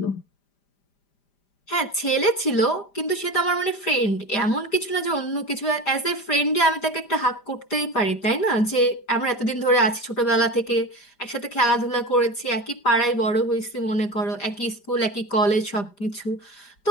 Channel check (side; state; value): right; late; 5.0 ms